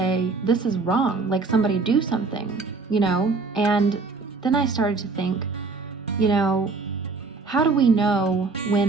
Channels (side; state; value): left; quieter; 4.2 dB